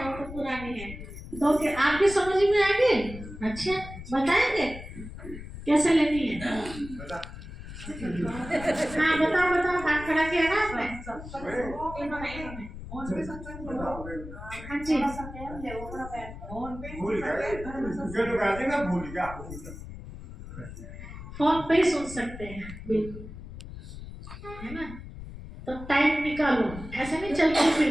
वो तो पुरानी है, तो क्या आपके समझ में आ गई? अच्छा बताएंगे कैसे लेनी है? हाँ बताओ बताओ, हाथ खड़ा किया ना आपने? हाँ जी, फोन पे ही सुन सकते हैं, बिल्कुल, है ना। तो टाइम निकालो, ऐसे नहीं चलते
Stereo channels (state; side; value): noise; left; rumble, 12 dB below the sound